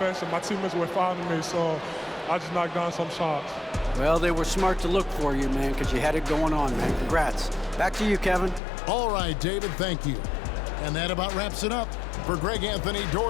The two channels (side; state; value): right; drops out; at 8.6 s